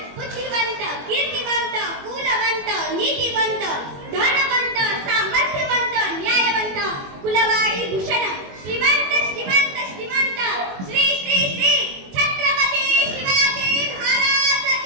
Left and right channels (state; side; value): late; left; 21 ms